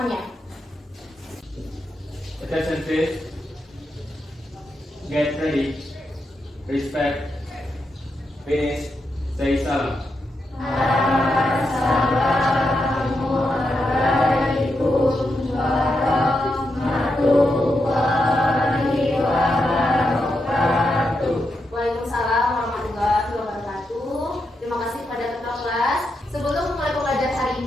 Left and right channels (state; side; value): normal; both; correlation 0.85